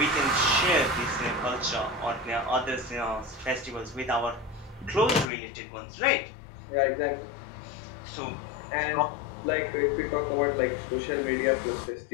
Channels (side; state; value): right; drops out; at 5.2 s